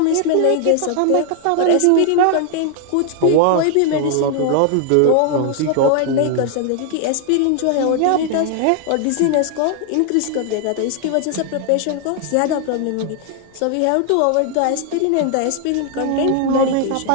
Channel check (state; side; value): different; both; correlation 0.00